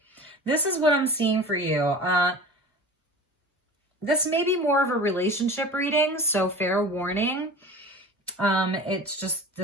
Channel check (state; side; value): normal; both; correlation 0.37